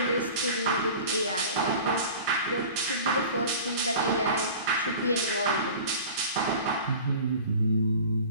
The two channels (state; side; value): inverted; both; correlation -0.40